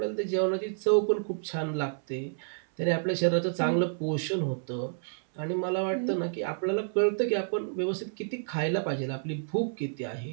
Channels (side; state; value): left; silent; 58 dB below the other